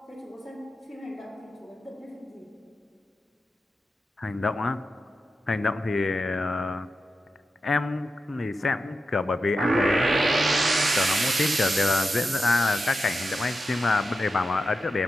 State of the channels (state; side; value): normal; both; correlation 0.90